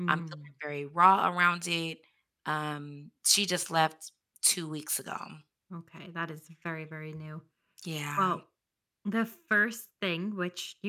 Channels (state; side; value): identical; both; correlation 1.00